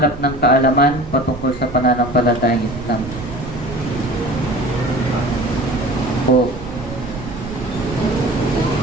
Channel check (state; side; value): noise; right; rumble, 13 dB below the sound